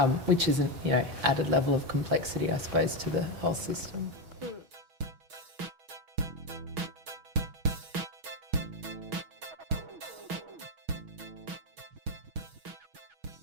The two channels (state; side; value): late; left; 6.2 ms